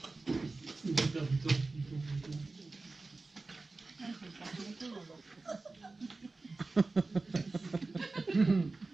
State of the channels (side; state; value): left; quieter; 3.5 dB